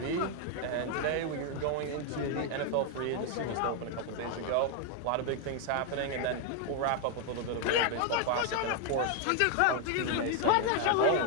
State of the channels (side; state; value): both; different; correlation 0.01